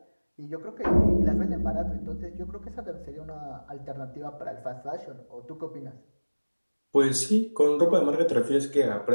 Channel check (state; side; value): inverted; both; correlation -1.00